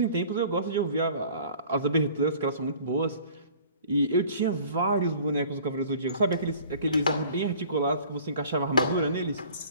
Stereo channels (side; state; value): both; inverted; correlation -0.49